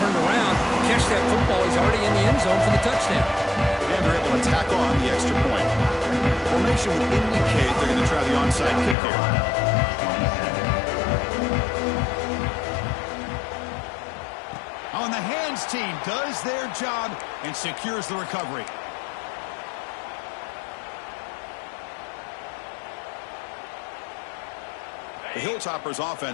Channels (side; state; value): right; drops out; at 9.0 s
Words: around, catch that football. He's already in the end zone for the touchdown. And they're able to tackle on the extra point. Formation would indicate they're going to try the onside kick here. On the hands team does their job and secures the recovery. The Hilltoppers